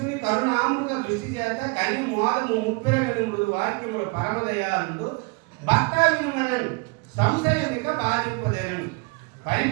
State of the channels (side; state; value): left; quieter; 29.3 dB